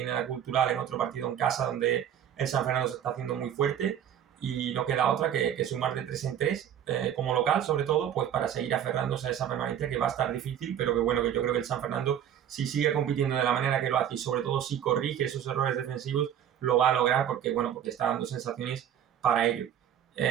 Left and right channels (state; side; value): quieter; left; 9.8 dB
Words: la Cultural en otro partido en casa donde el San Fernando se está haciendo muy fuerte y no queda otra que sumar de 3 en 3 como local, sobre todo, pues para seguir aferrándose a esa permanencia que va a estar difícil, pero que bueno, que yo creo que el San Fernando, si sigue compitiendo de la manera que lo hace y sobre todo si corrige esos errores defensivos, lo va a lograr porque está dando sensaciones para ello.